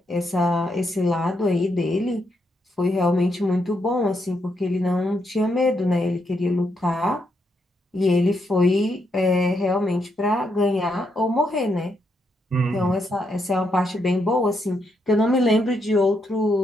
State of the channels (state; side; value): normal; both; correlation 0.79